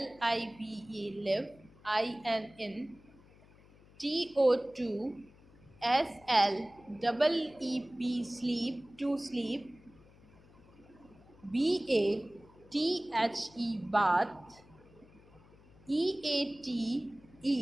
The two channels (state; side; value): noise; left; hum, 25 dB below the sound